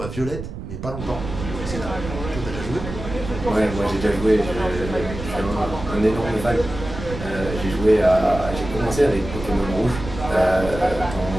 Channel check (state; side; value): noise; right; rumble, 9 dB below the sound